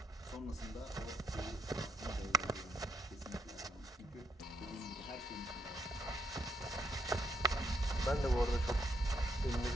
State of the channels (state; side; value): normal; both; correlation 0.76